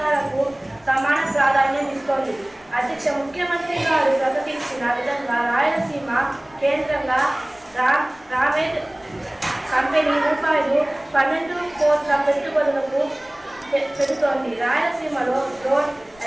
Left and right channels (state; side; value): noise; left; rumble, 29 dB below the sound